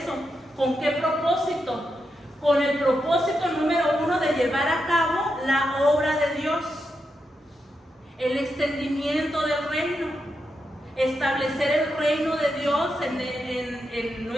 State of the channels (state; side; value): normal; both; correlation 0.85